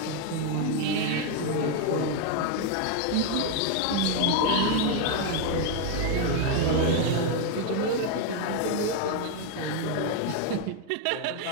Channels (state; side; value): different; both; correlation 0.01